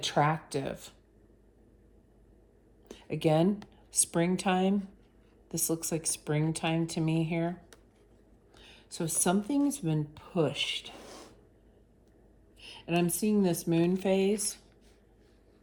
Again, springtime. This looks like springtime to me here. So something's been pushed. And I'm seeing this moon phase.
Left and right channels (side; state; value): both; identical; correlation 1.00